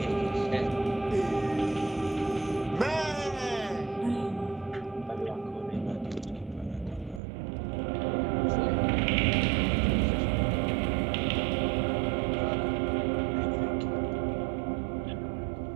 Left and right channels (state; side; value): drops out; left; at 7.2 s